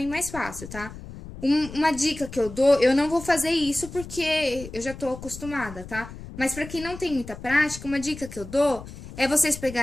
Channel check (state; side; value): noise; left; rumble, 13 dB below the sound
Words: mais fácil, tá? Uma dica que eu dou, eu não vou fazer isso porque eu já tô acostumada, tá? Mas pra quem não tem muita prática, uma dica que eu dou é vocês